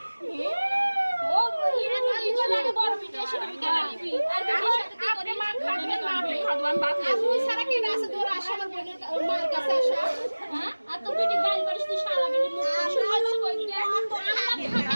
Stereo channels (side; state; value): both; inverted; correlation -1.00